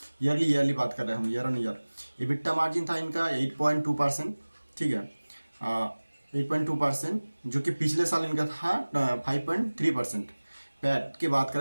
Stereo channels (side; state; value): both; inverted; correlation -1.00